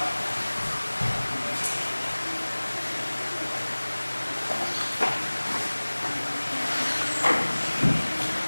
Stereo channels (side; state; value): both; inverted; correlation -1.00